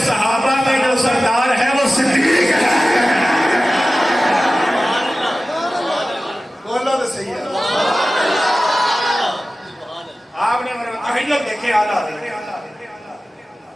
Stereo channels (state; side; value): normal; both; correlation 0.96